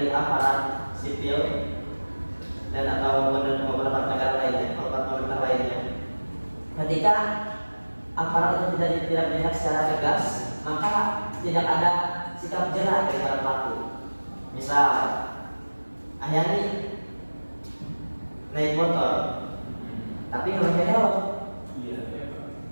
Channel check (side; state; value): both; inverted; correlation -1.00